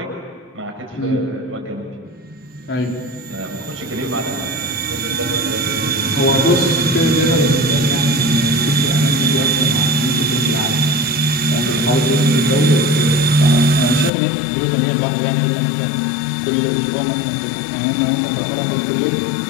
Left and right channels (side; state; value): right; drops out; at 14.1 s